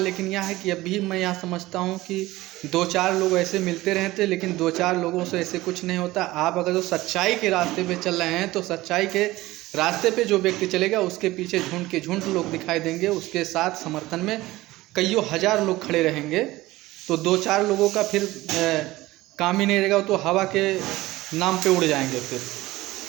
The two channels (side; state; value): left; quieter; 18.2 dB